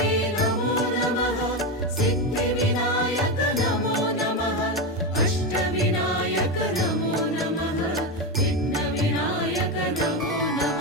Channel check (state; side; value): normal; both; correlation 0.13